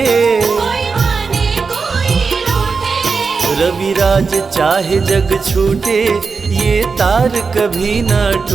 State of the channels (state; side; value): quieter; left; 4.9 dB